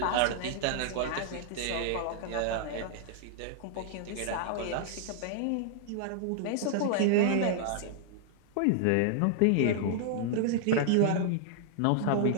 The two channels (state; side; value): different; both; correlation -0.01